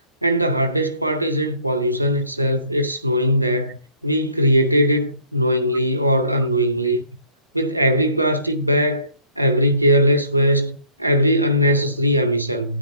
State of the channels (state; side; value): inverted; both; correlation -0.61